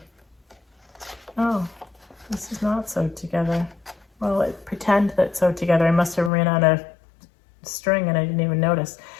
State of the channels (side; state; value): right; drops out; at 6.3 s